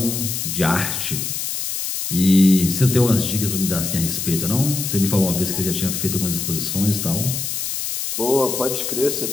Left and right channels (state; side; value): noise; left; hiss, 3 dB below the sound